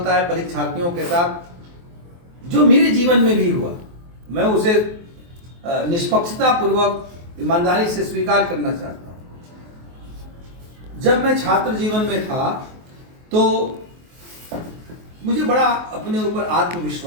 है परीक्षार्थियों के साथ, जो मेरे जीवन में भी हुआ, मैं उसे निष्पक्षता पूर्वक ईमानदारी से स्वीकार करना चाहता हूं। जब मैं छात्र जीवन में था तो मुझे बड़ा अपने ऊपर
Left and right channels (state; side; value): late; left; 23 ms